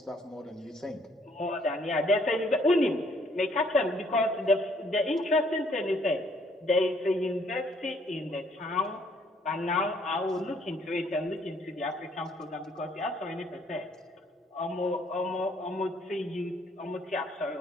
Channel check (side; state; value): both; normal; correlation 0.64